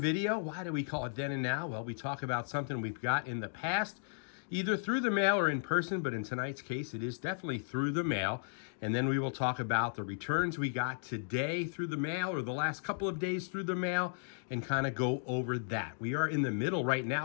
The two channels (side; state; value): right; silent; digital silence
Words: Why do we call it Then and Now? Well, we talk about something we've got in the past, either through the mail or in person, but in tonight's case, it is definitely through the mail. And then we will talk about the returns we got today through the mail or the last couple of days through the mail and kind of go over that. We are in the middle right